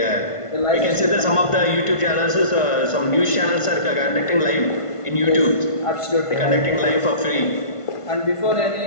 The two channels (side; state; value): right; late; 1.5 ms